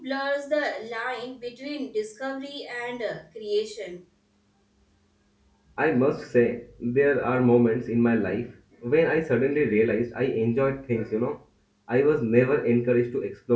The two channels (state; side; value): identical; both; correlation 1.00